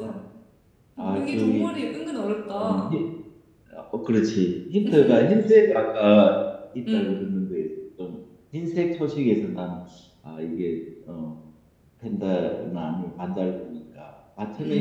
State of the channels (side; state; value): both; identical; correlation 1.00